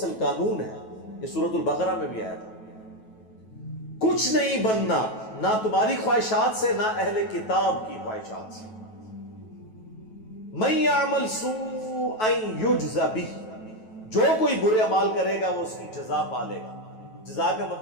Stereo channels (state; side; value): late; right; 9.2 ms